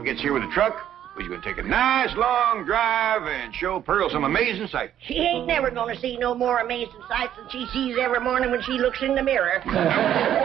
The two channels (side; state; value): left; quieter; 10.7 dB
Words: gets here with the truck, we're going to take a nice long drive and show Pearl some amazing sights. She ain't never going to see no more amazing sights than she sees every morning when she looks in the mirror.